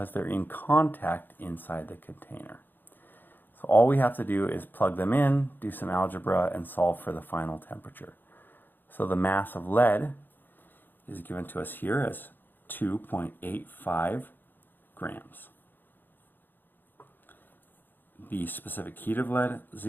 they're in contact inside the container. So all we have to do is plug them in, do some algebra, and solve for the final temperature. So the mass of lead is given to us here as 2.85 grams. The specific heat of lead,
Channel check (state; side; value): late; right; 0.093 ms